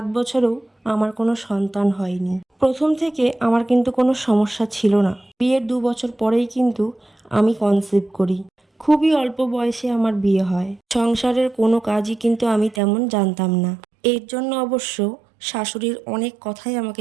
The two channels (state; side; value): drops out; left; at 12.8 s